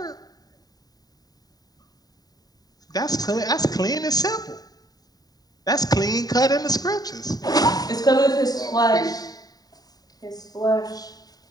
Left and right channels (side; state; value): right; late; 0.18 ms